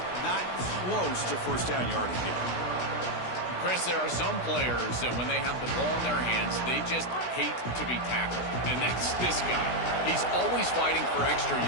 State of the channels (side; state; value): right; late; 16 ms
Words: not close to first down yardage yet. Chris, there are some players that when they have the ball in their hands, they just hate to be tackled. And that's this guy. He's always fighting for extra